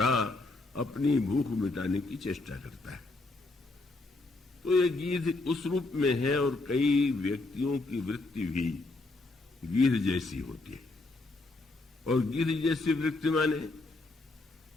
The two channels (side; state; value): right; quieter; 3.1 dB